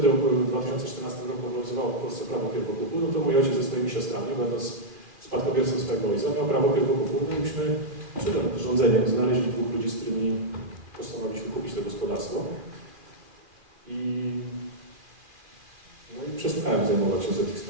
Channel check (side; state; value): left; late; 2.6 ms